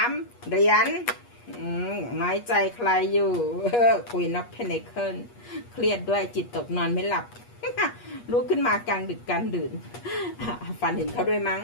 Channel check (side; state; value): right; late; 8.4 ms